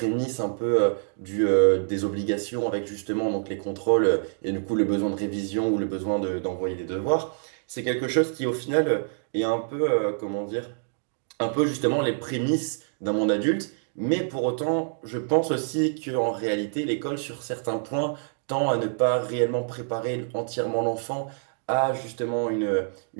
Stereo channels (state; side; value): silent; left; digital silence